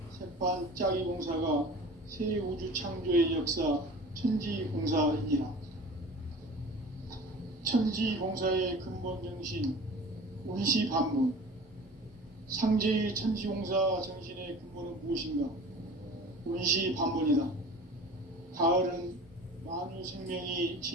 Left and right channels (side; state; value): both; normal; correlation 0.41